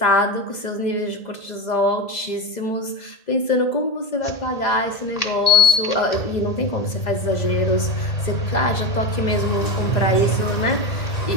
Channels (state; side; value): late; right; 2.0 ms